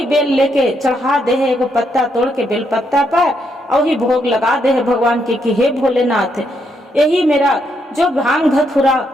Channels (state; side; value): normal; both; correlation 0.77